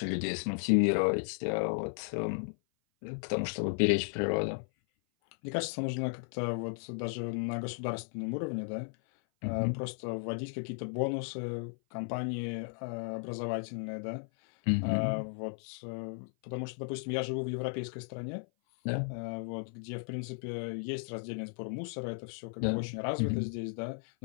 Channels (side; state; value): right; silent; 55 dB below the other